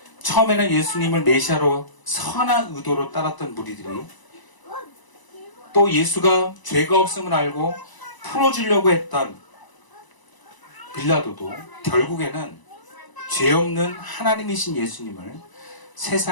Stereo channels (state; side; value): late; right; 1.0 ms